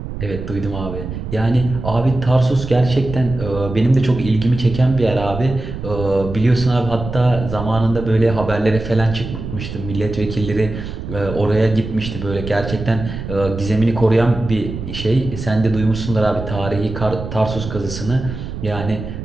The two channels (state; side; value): noise; right; rumble, 8 dB below the sound